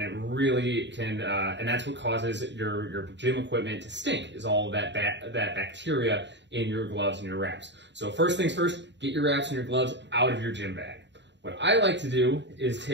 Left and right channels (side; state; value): left; late; 0.52 ms